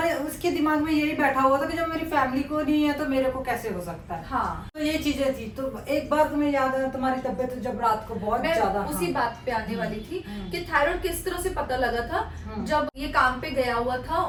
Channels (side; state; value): both; identical; correlation 1.00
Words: उसके दिमाग में यही बैठा हुआ था कि जब मेरी फैमिली को नहीं है तो मेरे को कैसे हो सकता है। हाँ, तो ये चीजें थी। तो एक बार तुम्हें याद है तुम्हारी तबीयत जब रात को बहुत ज्यादा, उसी बात पे आने वाली थी कि थायराइड किस तरह से पता लगा था। जब ये काम पे गया हुआ था